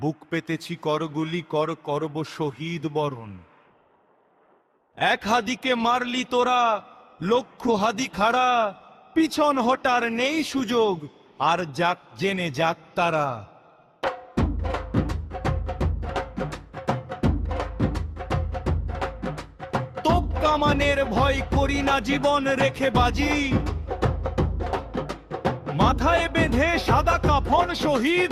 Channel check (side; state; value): both; identical; correlation 1.00